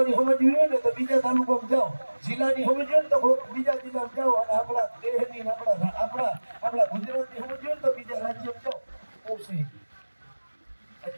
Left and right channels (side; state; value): both; inverted; correlation -1.00